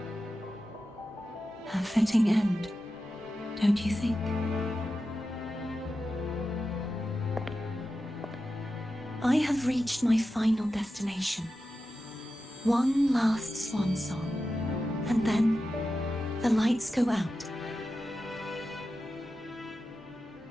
A fitting end, don't you think? I have reached my final destination. One last swan song, and then the lights go out.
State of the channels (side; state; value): both; normal; correlation 0.92